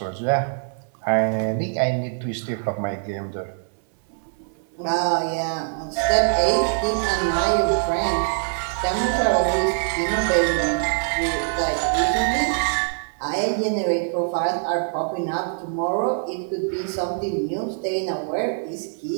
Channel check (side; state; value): left; silent; 63 dB below the other